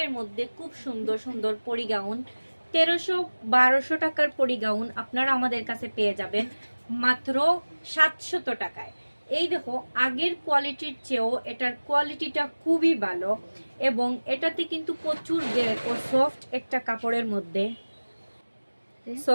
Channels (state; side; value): inverted; both; correlation -1.00